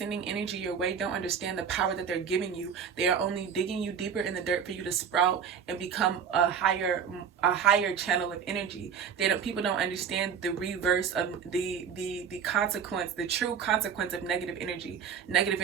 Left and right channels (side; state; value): left; quieter; 7.3 dB